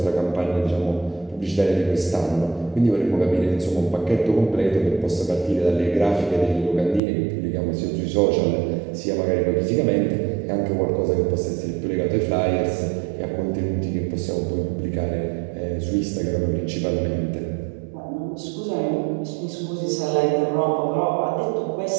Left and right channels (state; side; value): drops out; left; at 7.0 s